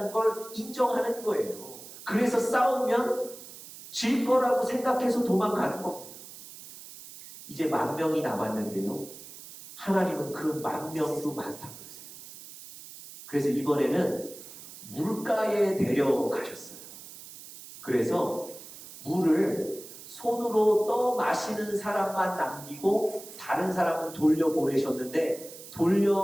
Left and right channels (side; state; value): right; noise; hiss, 15 dB below the sound